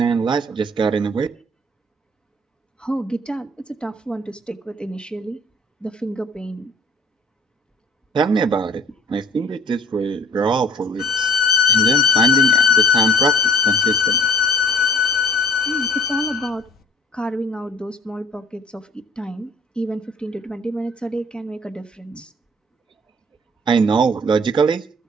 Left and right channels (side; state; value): both; normal; correlation 0.52